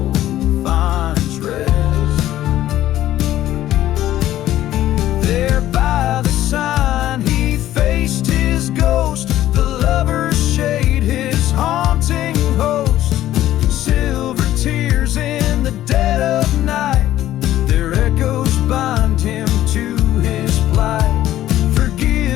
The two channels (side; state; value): right; quieter; 13.5 dB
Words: finds rest. There by the sign he faced his ghost, the lover's shade, his haunting host. Silver tears in the dead of night, their echoes bind him to his plight.